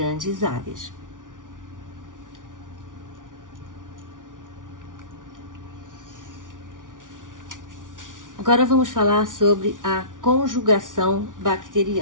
áreas. Agora vamos falar sobre a conjugação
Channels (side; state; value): left; late; 0.88 ms